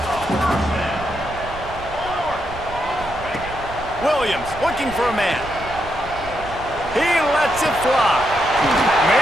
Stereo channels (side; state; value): right; noise; rumble, 14 dB below the sound